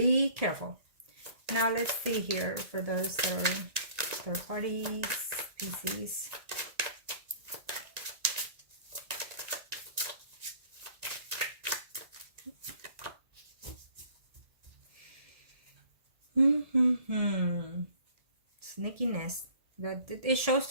careful. Now let's see here for those third parties, Pisces. Sneakiness. It shows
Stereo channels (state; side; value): late; left; 1.9 ms